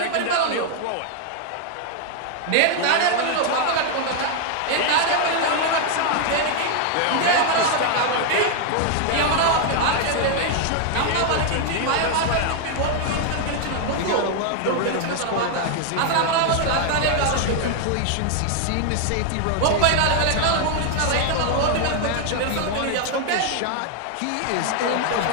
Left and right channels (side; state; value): both; different; correlation 0.00